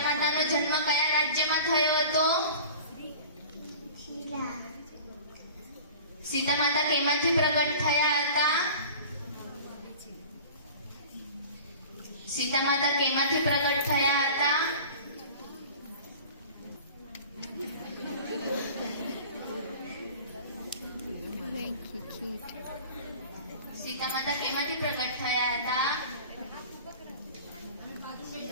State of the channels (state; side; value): inverted; both; correlation -0.41